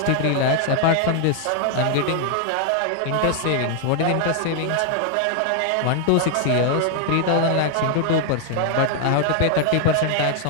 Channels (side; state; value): both; different; correlation 0.00